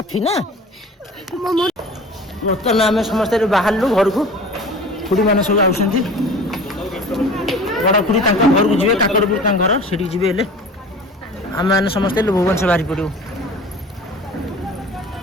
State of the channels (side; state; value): both; normal; correlation 0.41